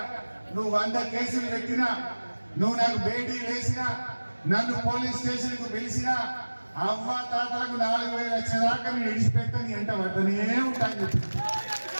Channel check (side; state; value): both; inverted; correlation -1.00